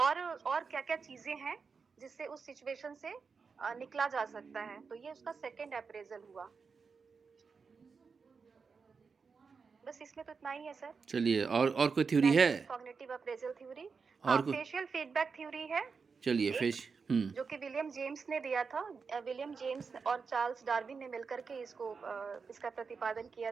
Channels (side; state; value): left; quieter; 5.2 dB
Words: क्या-क्या चीज़ें हैं, जिससे उस सिचुएशन से निकला जा सकता है। तो ये उसका सेकंड अप्रेज़ल हुआ। बस इसमें तो इतना ही है सर। चलिए, और कोई थ्योरी है? Cognitive appraisal theory. और हाँ, कोई? फेशियल फीडबैक थ्योरी है चलिए एक, फिश। जो कि विलियम जेम्स ने दिया था। विलियम जेम्स और चार्ल्स डार्विन ने मिलकर के इसका प्रतिपादन किया